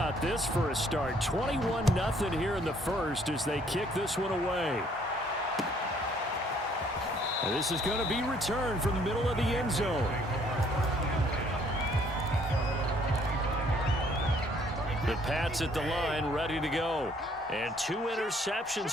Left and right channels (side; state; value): both; normal; correlation 0.63